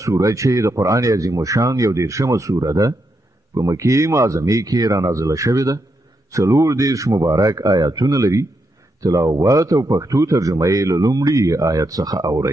سوره چې د قران عظیم شان یو 13مه سوره ده په مکی معظمه کې را نازله شوې ده. 40 مبارک آیاتونه لري. تلاوت او پښتو ترجمه یې له لومړي آیت څخه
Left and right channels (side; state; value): both; normal; correlation 0.82